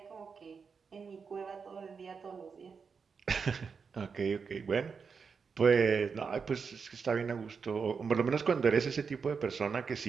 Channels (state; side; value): quieter; left; 5.6 dB